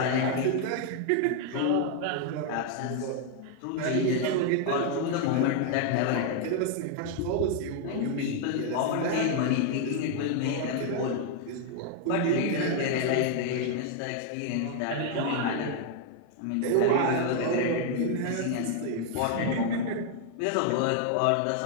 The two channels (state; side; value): different; both; correlation 0.00